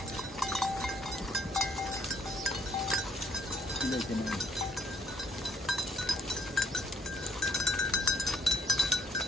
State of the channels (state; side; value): normal; both; correlation 0.66